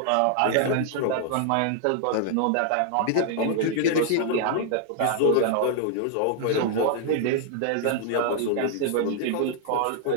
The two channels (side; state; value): both; different; correlation 0.00